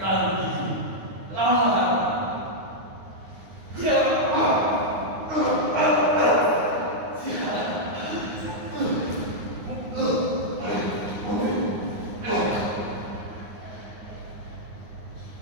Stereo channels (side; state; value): left; late; 9.6 ms